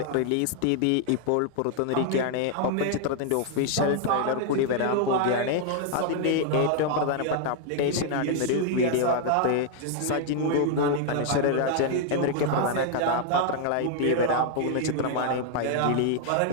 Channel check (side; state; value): both; different; correlation 0.00